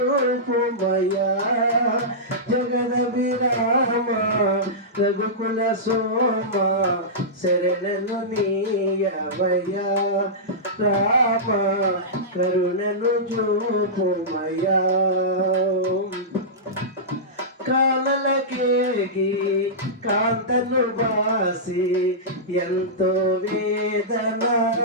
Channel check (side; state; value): both; normal; correlation -0.15